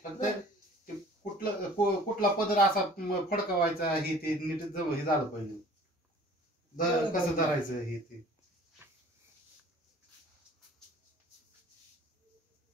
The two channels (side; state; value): both; normal; correlation 0.49